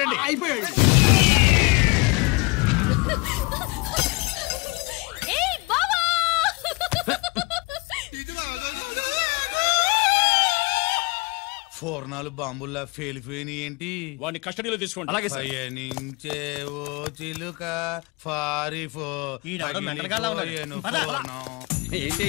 అయిపోయాడు. ఫోర్నాలు బాంబుల్లా ఫేలిపోయినాయి ఏంటి? వాడిని కస్టడీలో తీసుకోండి. అలాగే పయనించే ఓ చిలుక పారిపో. ఏంటి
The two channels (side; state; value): right; quieter; 26.2 dB